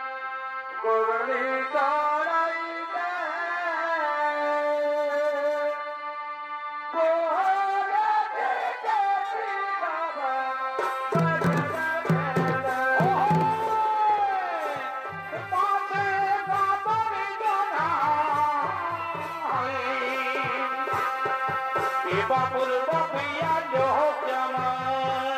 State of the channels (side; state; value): both; identical; correlation 1.00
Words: গগনি চড়াই বাবুর বাপিয়া লোক